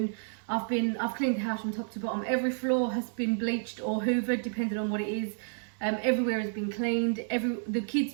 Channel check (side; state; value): left; silent; digital silence